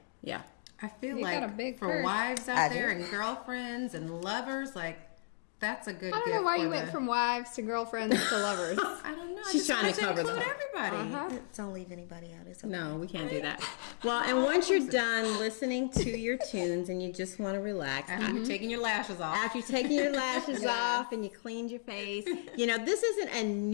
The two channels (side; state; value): right; silent; digital silence